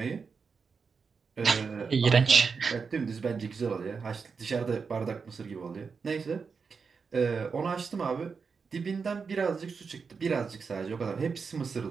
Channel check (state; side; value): quieter; left; 5.4 dB